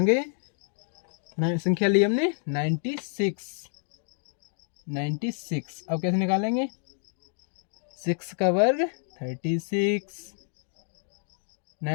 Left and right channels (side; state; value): right; silent; digital silence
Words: संख्या ली हमने 96, 96। अब कैसे निकालेंगे, 6 का वर्ग 36,